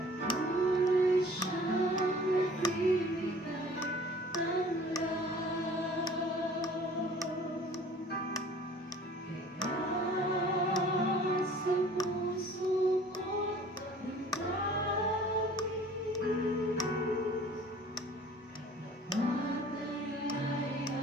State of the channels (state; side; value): normal; both; correlation 0.49